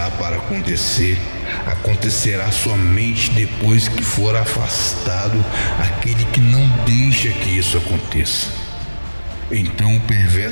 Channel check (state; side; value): inverted; both; correlation -1.00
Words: para acontecer acontecerá somente depois que for afastado aquele que não deixa que isso aconteça. Então o